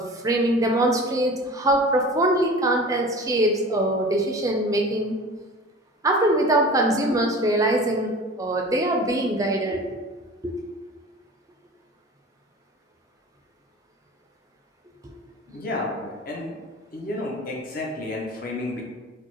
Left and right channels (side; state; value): both; normal; correlation 0.39